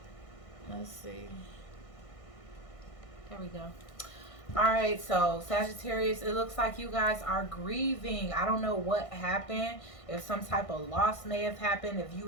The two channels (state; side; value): late; right; 1.6 ms